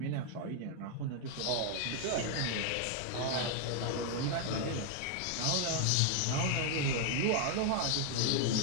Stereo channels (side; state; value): both; different; correlation 0.00